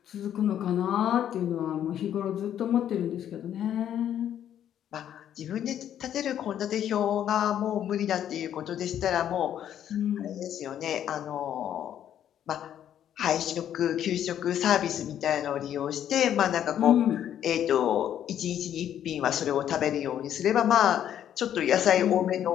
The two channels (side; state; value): right; quieter; 10.3 dB